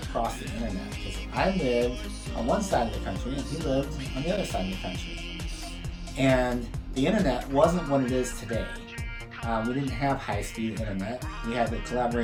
across the internet because I lived on one side of the country and he lived on the other side of the country. And the internet wasn't what it is today. We didn't have high-speed internet. We had to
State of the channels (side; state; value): both; identical; correlation 1.00